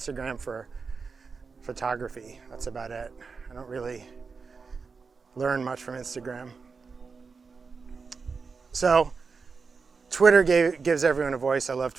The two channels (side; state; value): left; quieter; 4.9 dB